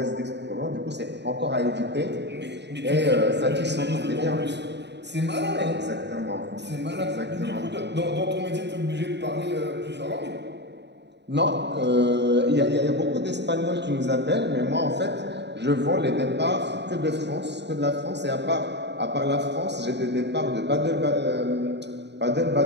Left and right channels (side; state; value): left; late; 0.50 ms